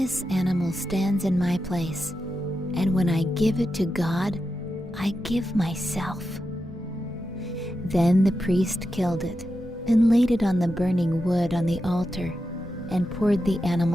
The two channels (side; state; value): both; normal; correlation 0.89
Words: animal stands in my place, and when I give it to God, I give myself." Then the priest killed it and laid it on the burning wood on the altar and poured the